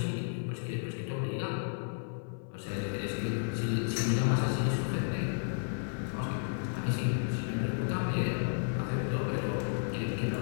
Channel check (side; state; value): right; silent; 56 dB below the other